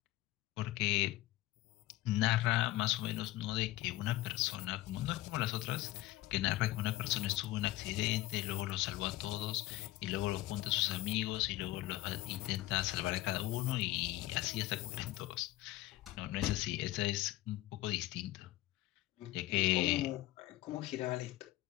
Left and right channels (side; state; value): right; quieter; 16.6 dB